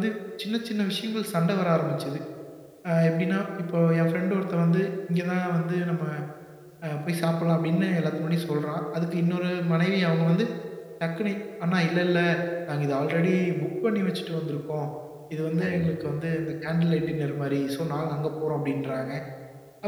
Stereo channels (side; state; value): both; identical; correlation 1.00